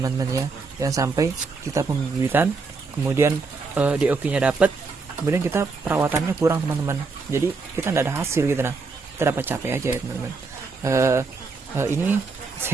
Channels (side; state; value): left; quieter; 4.3 dB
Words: ya. Jangan sampai kita pembibitan kemudian DOQ-nya dapat, kemudian kita perawatannya kurang teman-teman. Jadi kita tidak ada hasil gitu, nah kita dapat capek aja ya teman-teman. Ini